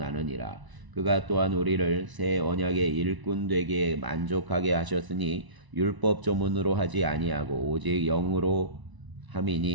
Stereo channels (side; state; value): left; late; 1.0 ms